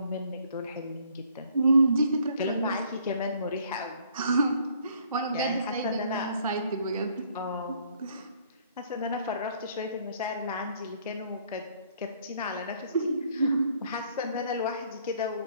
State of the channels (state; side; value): inverted; both; correlation -0.63